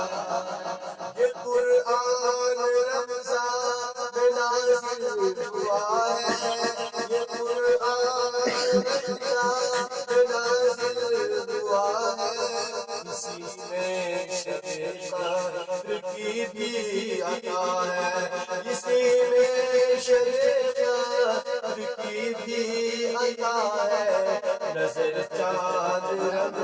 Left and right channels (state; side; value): identical; both; correlation 1.00